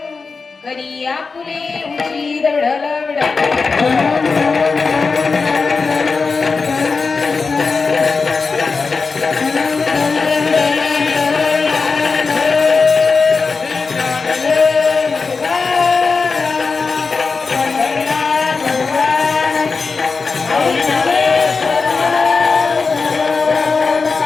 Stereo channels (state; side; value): quieter; right; 4.5 dB